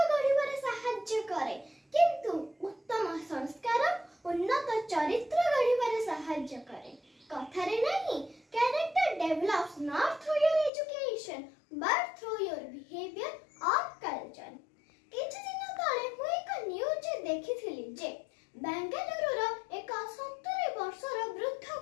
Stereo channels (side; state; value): right; drops out; at 10.7 s